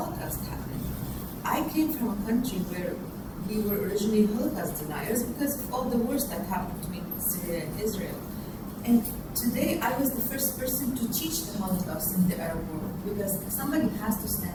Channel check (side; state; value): both; identical; correlation 1.00